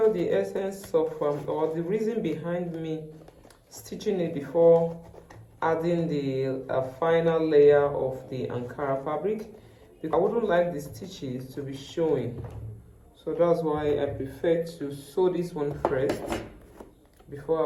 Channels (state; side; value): identical; both; correlation 1.00